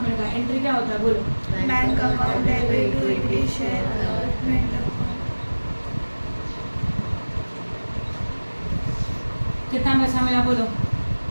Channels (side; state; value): both; inverted; correlation -1.00